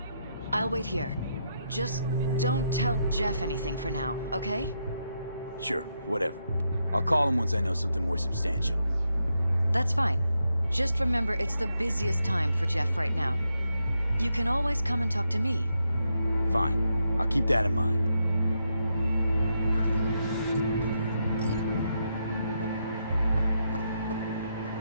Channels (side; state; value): both; inverted; correlation -0.82